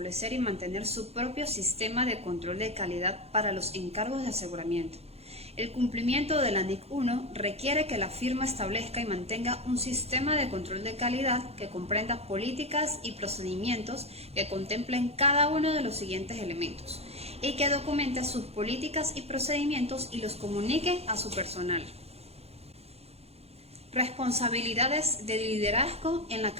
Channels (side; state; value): left; late; 0.30 ms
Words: y mantener su propio sistema de control de calidad para los encargos de aseguramiento. El cumplimiento de la NIC 1 requiere que la firma establezca y mantenga un sistema de control de calidad que comprenda políticas y procedimientos que contemplen cada uno de los siguientes elementos y que documente sus políticas y procedimientos y los comunique a su personal. Responsabilidades de liderazgo en la